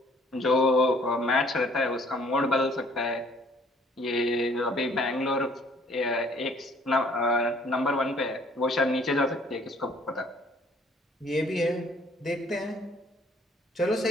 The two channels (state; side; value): normal; both; correlation 0.59